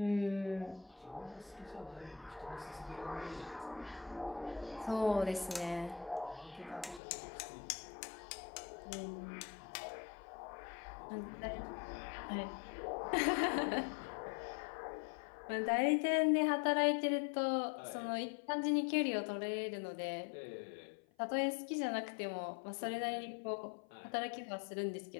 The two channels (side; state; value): right; drops out; at 7.0 s